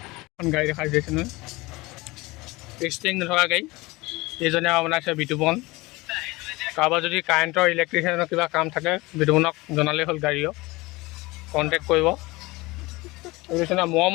এখন গাড়ী দেখাই দিছে নহয় ষ্টিং নথকা গাড়ী এইজনে বনাইছে বিতুপন কাৰোবাৰ যদি কাৰেণ্টৰ ইলেক্ট্ৰিচিয়ানৰ কিবা কাম থাকে বিতুপনক জনালেই হ'ল গাড়ীও কণ্টেক্ট কৰিব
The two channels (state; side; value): quieter; right; 22.2 dB